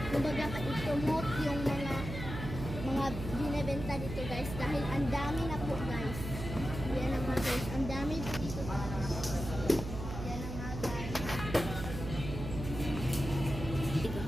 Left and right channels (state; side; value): noise; right; hum, 7 dB below the sound